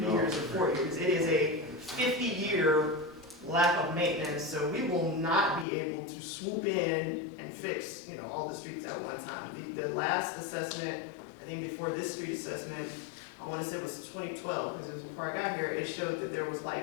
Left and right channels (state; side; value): drops out; right; at 5.7 s